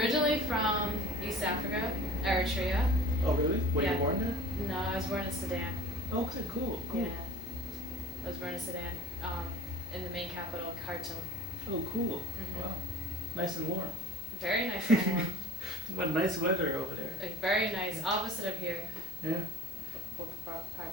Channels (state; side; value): normal; both; correlation 0.41